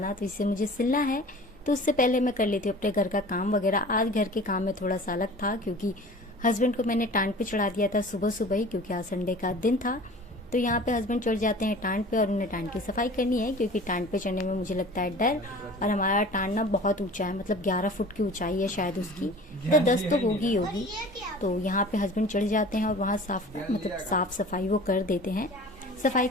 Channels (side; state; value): both; normal; correlation 0.42